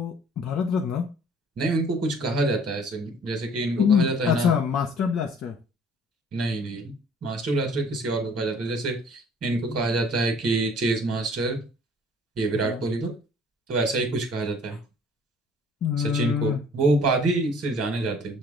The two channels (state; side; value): normal; both; correlation 0.54